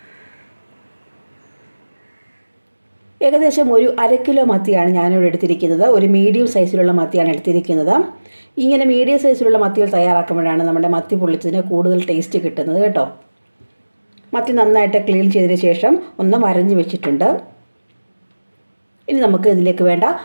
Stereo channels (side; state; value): both; inverted; correlation -1.00